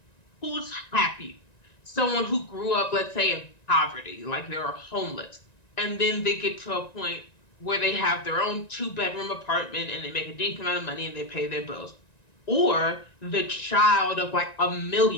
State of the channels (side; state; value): right; late; 1.9 ms